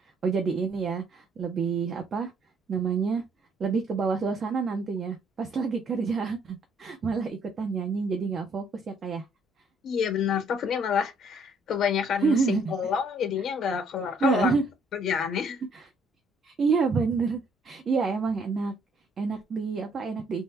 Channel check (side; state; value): both; normal; correlation 0.64